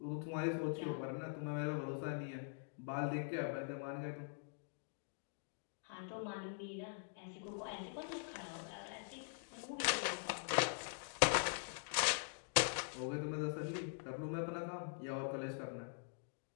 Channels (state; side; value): silent; right; digital silence